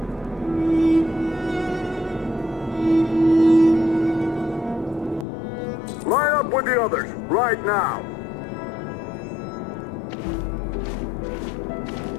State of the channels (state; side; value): drops out; right; at 5.2 s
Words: Line up with the others, right now.